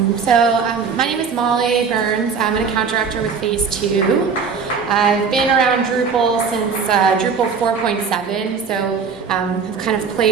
name is Molly Burns. I'm an account director with Phase 2. I've been around Drupal since Drupal 4.7, so I've kind of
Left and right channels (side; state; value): left; quieter; 5.8 dB